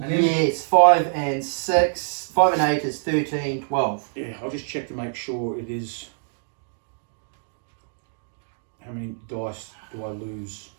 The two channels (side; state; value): left; silent; 62 dB below the other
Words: then, Yes, 5 and 6. 5 and 8 is 13, 12. yeah, I'll just check to make sure it is. How many dice do I lose?